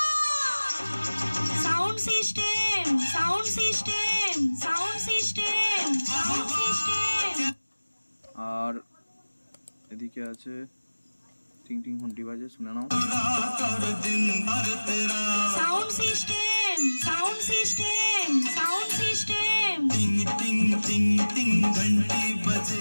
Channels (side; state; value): both; inverted; correlation -1.00